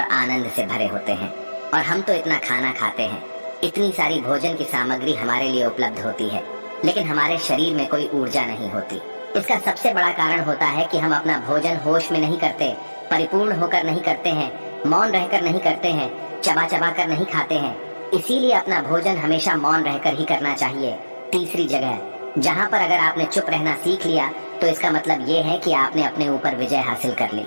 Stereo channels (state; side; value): inverted; both; correlation -1.00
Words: आनंद से भरे होते हैं। और हम तो इतना खाना खाते हैं, इतनी सारी भोजन की सामग्री हमारे लिए उपलब्ध होती है, लेकिन हमारे शरीर में कोई ऊर्जा नहीं होती। इसका सबसे बड़ा कारण होता है कि हम अपना भोजन होश में नहीं करते, परिपूर्ण होकर नहीं करते हैं, मौन रहकर नहीं करते हैं, चबा चबा कर नहीं खाते हैं। इसीलिए अपना भोजन हमेशा मौन रहकर ही करना चाहिए। तीसरी जगह जहाँ पर अगर आपने चुप रहना सीख लिया तो इसका मतलब ये है कि आपने अपने ऊपर विजय हासिल कर ली।